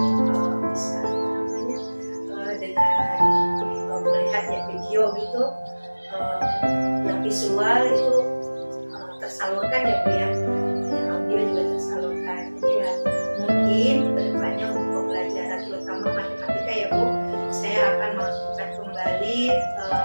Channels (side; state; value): both; inverted; correlation -1.00